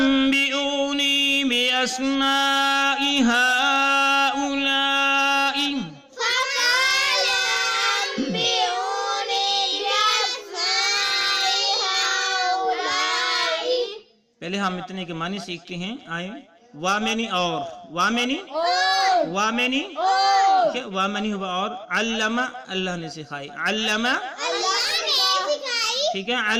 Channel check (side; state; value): both; identical; correlation 1.00